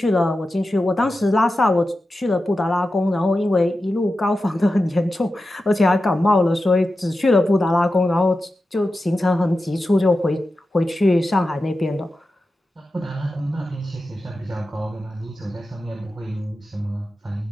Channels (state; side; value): normal; both; correlation 0.92